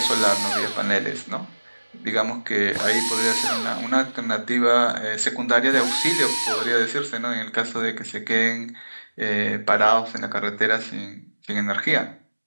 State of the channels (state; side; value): inverted; both; correlation -1.00